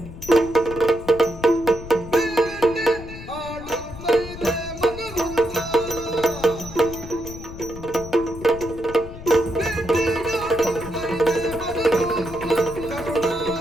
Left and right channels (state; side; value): noise; left; rumble, 13 dB below the sound